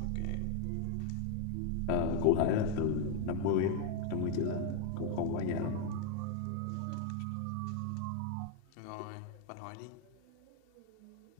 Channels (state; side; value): different; both; correlation 0.00